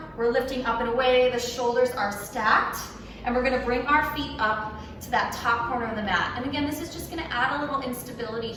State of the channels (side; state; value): both; identical; correlation 1.00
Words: we're lifting up and away, the shoulders are stacked, and we're going to bring our feet up to that top corner of the mat. And again, this is just going to add a little instability